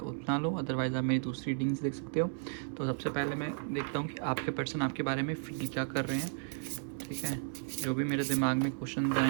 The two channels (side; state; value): left; silent; 55 dB below the other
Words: उतना लो, अदरवाइज़ आप मेरी दूसरी रीडिंग्स देख सकते हो। तो सबसे पहले मैं देखता हूँ कि आपके पर्सन आपके बारे में फील क्या कर रहे हैं। ठीक है, जो भी मेरे दिमाग में क्वेश्चन